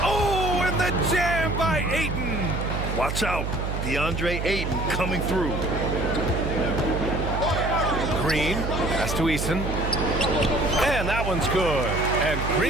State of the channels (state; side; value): noise; right; hum, 3 dB below the sound